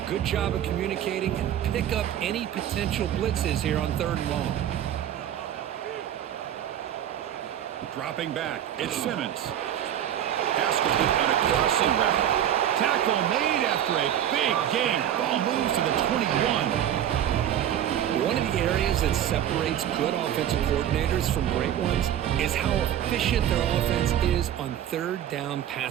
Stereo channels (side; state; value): left; quieter; 10.7 dB